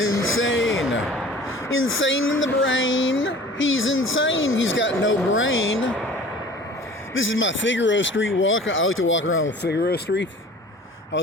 Insane in the brain. He's insane. He's got no brain. This is my Figaro Street walk. I like to walk around with Figaro Street. I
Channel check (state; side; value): normal; both; correlation 0.45